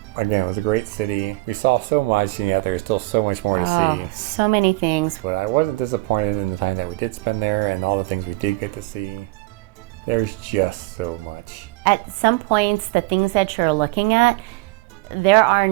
again, it was a great city. We saw so much, and yet there's still so much more to see. So many things. But I wasn't disappointed in the time that we did spend there and all the things we did get to see. There's just so much. At some points, the things that you're looking at, there are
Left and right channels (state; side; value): quieter; left; 21.2 dB